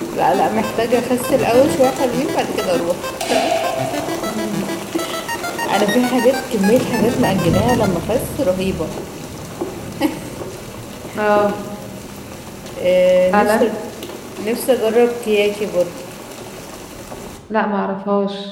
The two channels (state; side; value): identical; both; correlation 1.00